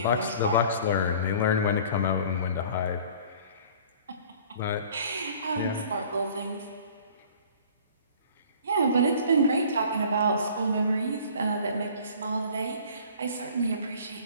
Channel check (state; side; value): inverted; both; correlation -0.48